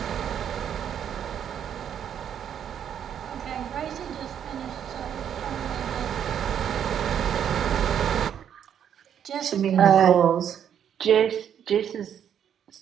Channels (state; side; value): quieter; left; 9.1 dB